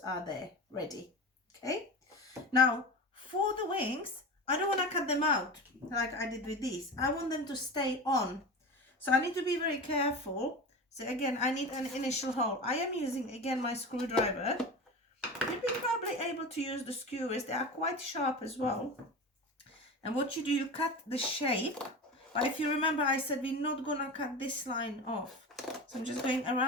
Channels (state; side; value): normal; both; correlation 0.28